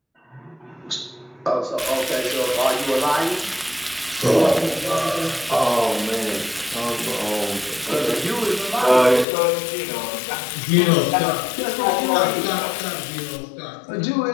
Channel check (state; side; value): drops out; right; at 9.2 s